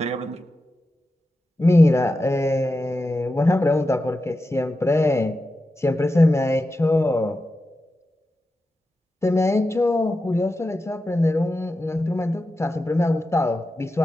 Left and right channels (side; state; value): both; normal; correlation 0.91